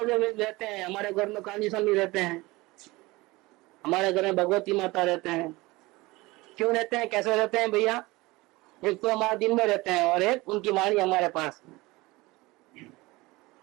रहते हैं, हमारे घर में काली स्वामी रहते हैं, हमारे घर में भगवती माता रहते हैं। क्यों रहते हैं, कैसे रहते हैं भैया? एक तो हमारे दिन में रहते हैं और एक उनकी वाणी हमारे पास।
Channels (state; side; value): quieter; left; 21.5 dB